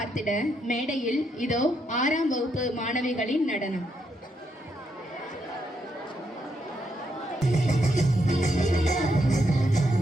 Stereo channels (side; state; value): both; normal; correlation 0.78